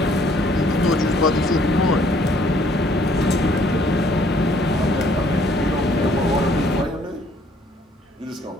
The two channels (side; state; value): both; normal; correlation 0.62